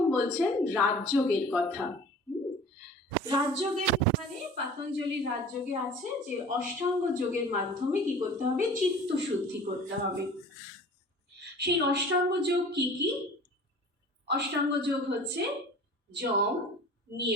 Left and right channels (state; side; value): normal; both; correlation 0.43